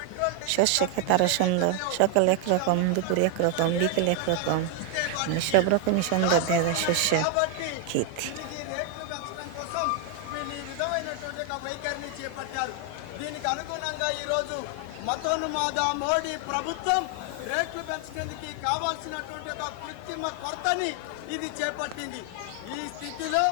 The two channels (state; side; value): different; both; correlation 0.00